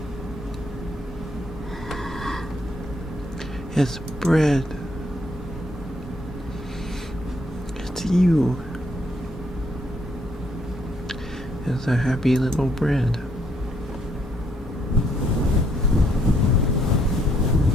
It's bread. It's you. It's a happy little bread.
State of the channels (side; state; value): both; normal; correlation 0.71